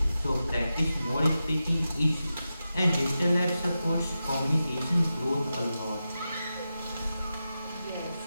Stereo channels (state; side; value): inverted; both; correlation -0.91